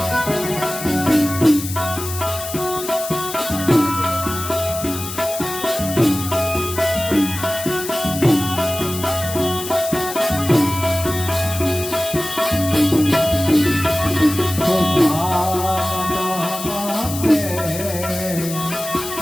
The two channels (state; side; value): noise; left; hiss, 9 dB below the sound